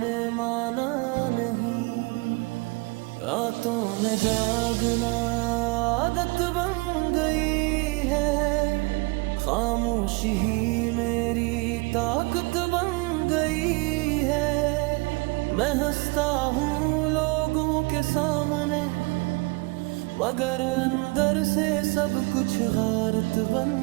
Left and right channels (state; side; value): quieter; left; 27.1 dB